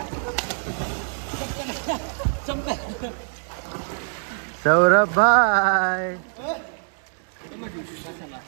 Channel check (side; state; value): left; silent; digital silence